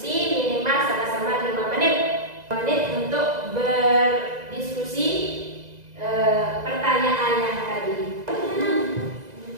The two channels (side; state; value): left; late; 2.0 ms